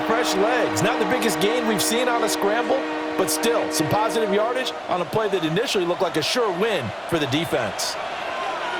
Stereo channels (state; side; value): identical; both; correlation 1.00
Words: fresh legs. Not the biggest gain we've seen on a scramble, but still some positive yardage on a play that initially looked like a sure win for the defense.